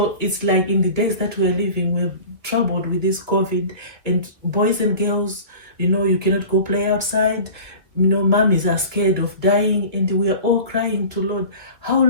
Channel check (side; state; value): left; late; 2.1 ms